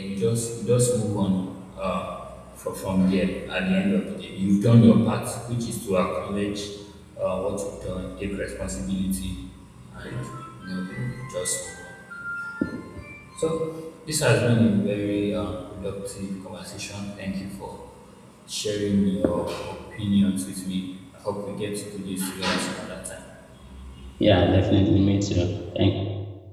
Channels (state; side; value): identical; both; correlation 1.00